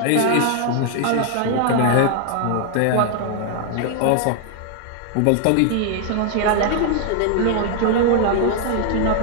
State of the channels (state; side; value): different; both; correlation 0.00